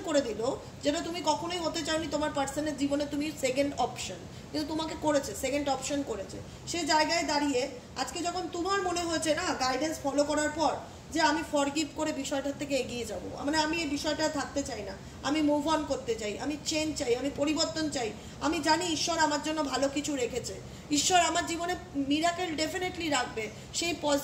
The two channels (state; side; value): identical; both; correlation 1.00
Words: করে দিল যেটা তুমি কখনোই হতে চাওনি তোমার পার্সনের জীবনে, তুমি সেকেন্ড অপশন, কিন্তু তোমাকে করেছে, সেকেন্ড অপশন করেছে। সে জায়গায় দাঁড়িয়ে আজকে যখন তোমার মনে হয়েছে না গাইডেন্স ফলো করার পর যে আমি ফরগিভ করে বিষয়টার থেকে এগিয়ে যাব, মানে আমি এই বিষয়টা থাকতে চাই না, আমি মুভ অন করতে চাই, আমি চেঞ্জ চাই, আমি পরিবর্তন চাই, আমি জানি ঈশ্বর আমার জন্য ভালো কিছু রেখেছে, ঈশ্বর আমার জীবনে মিরাকেল ডেফিনেটলি রাখবে, সেই